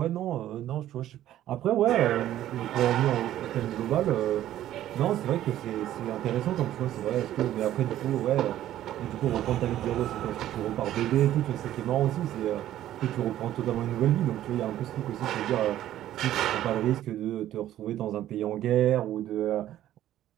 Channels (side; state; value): left; quieter; 12.8 dB